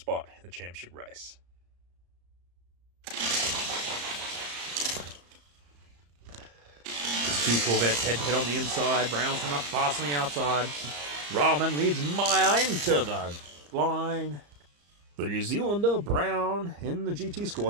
in the championship race. There's 2 Corvettes head-to-head on the inside. Brown's coming up fast on the outside. Rahman leads Maya into the line. The New Zealander, Brown, in the GT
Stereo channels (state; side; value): late; left; 34 ms